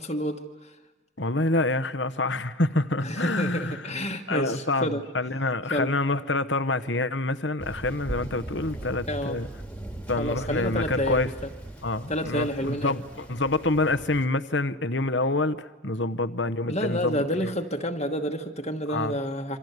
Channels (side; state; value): both; normal; correlation 0.30